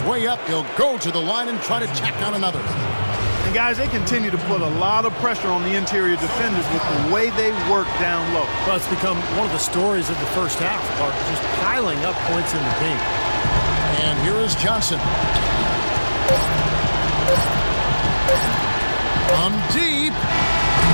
way up. He'll go to the line and try to tack on another. And guys, they continue to put a lot of pressure on the interior defenders with the way they work down low. Well, it's become one of the stories of the first half, Clark, just piling up points in the paint. And here is Johnson. From deep.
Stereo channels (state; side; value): inverted; both; correlation -1.00